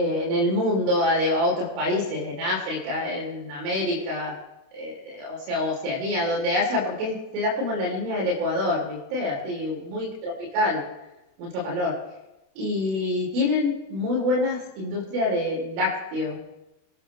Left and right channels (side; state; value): left; late; 32 ms